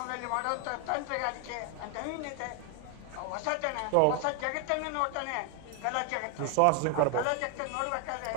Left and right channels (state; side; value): different; both; correlation 0.00